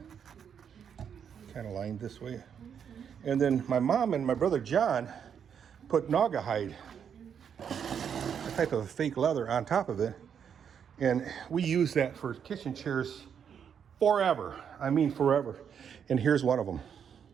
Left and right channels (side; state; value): left; quieter; 7.8 dB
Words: Kind of lined this way. And then my mom and my brother John put naga hide, a type of fake leather, on top of it. And we use that for kitchen chairs forever. I mean forever. And here's one of them.